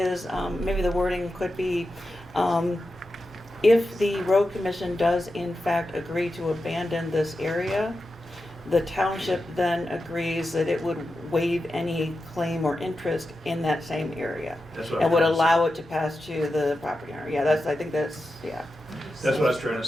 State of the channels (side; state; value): both; normal; correlation 0.90